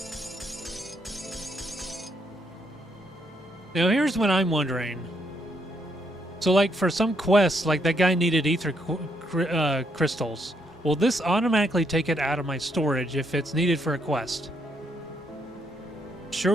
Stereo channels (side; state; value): both; normal; correlation 0.75